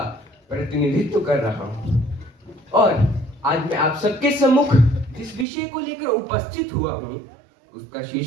प्रतिनिधित्व कर रहा हूं और आज मैं आप सबके सम्मुख जिस विषय को लेकर उपस्थित हुआ हूं उसका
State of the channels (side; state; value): left; drops out; at 5.5 s